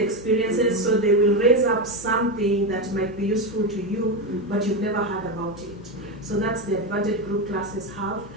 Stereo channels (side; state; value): both; normal; correlation 0.13